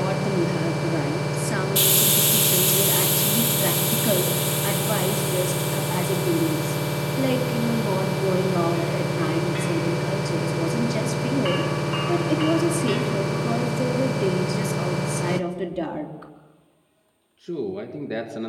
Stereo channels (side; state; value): both; identical; correlation 1.00